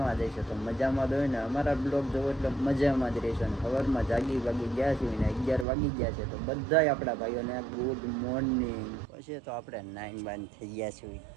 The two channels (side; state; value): left; drops out; at 5.7 s